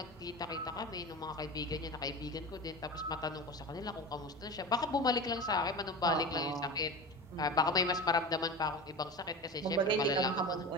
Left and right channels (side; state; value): both; normal; correlation 0.29